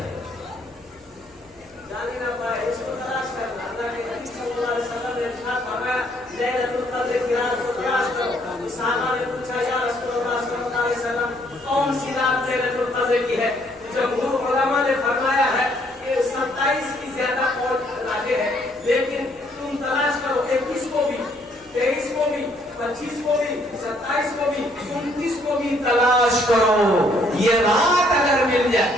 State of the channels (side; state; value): right; noise; hum, 29 dB below the sound